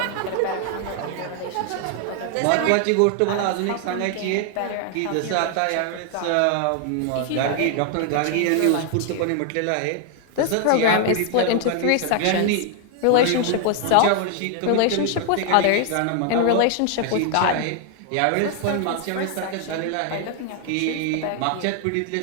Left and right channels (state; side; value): different; both; correlation 0.00